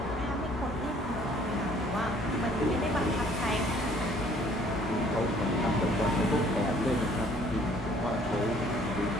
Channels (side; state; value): both; normal; correlation 0.58